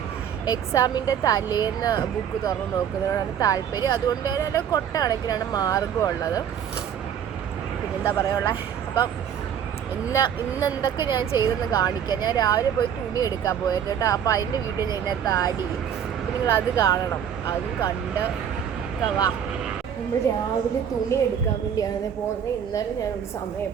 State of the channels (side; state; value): left; quieter; 8.7 dB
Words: എക്സാമിൻ്റെ തലേന്ന് ബുക്ക് തുറന്ന് നോക്കുന്നതിനോടാണ് താല്പര്യം. അതുകൊണ്ട് തന്നെ കൊട്ട കണക്കിനാണ് മാർഗം ഉള്ളത്. പിന്നെന്താ പറയുക, അപ്പം ഇന്ന് എന്തൊക്കെ ഞാൻ ചെയ്തെന്ന് കാണിക്കാം. ഞാൻ രാവിലെ പോയി തുണി എടുക്കാൻ പോയിരുന്നു കേട്ടോ. അപ്പോൾ അതിൻ്റെ വീഡിയോ ഞാൻ ഇതിനകത്ത് ആഡ് ചെയ്യും. അപ്പം നിങ്ങളത് കാണണം. അതും കണ്ട് വാ. നമ്മൾ രാവിലെ തുണി എടുക്കാൻ വേണ്ടിയാണ് പോകുന്നത്. ഇന്നലെ ഞാനൊരു സമയം